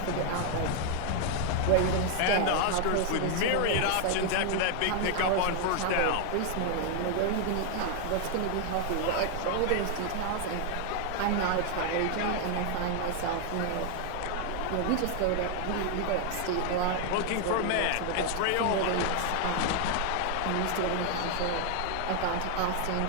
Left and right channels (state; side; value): different; both; correlation 0.00